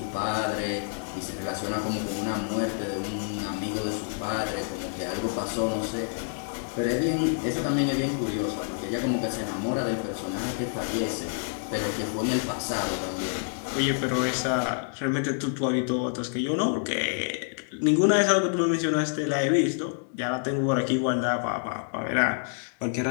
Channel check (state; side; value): silent; right; digital silence